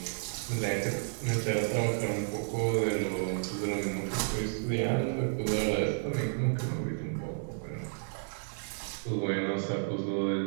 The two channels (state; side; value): silent; left; 57 dB below the other